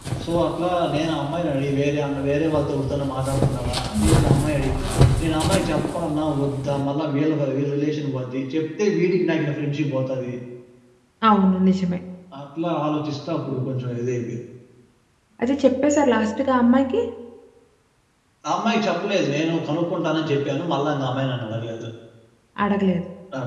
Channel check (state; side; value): identical; both; correlation 1.00